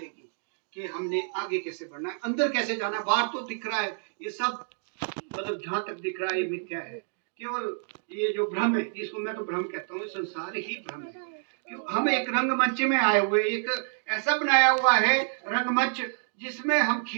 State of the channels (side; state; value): left; silent; digital silence